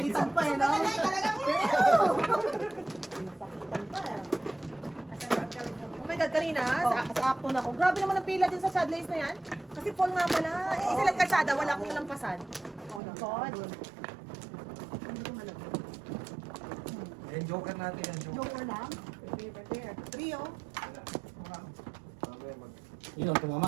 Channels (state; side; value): drops out; left; at 13.0 s